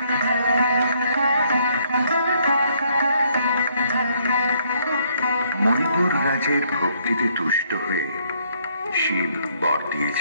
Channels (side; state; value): both; inverted; correlation -0.69